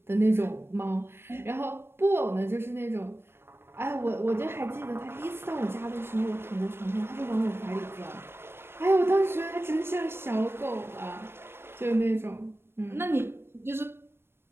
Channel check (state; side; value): late; left; 0.12 ms